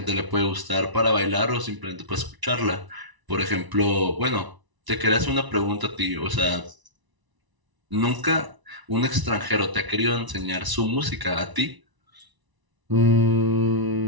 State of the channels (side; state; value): left; late; 1.0 ms